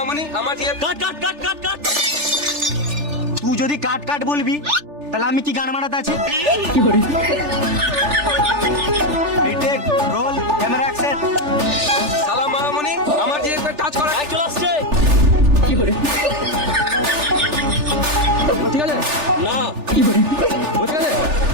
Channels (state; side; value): late; left; 3.4 ms